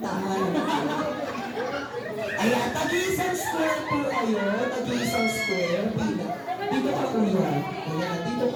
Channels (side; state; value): both; identical; correlation 1.00